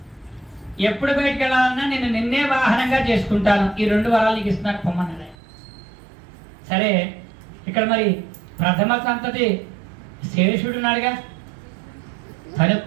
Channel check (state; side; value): drops out; left; at 5.4 s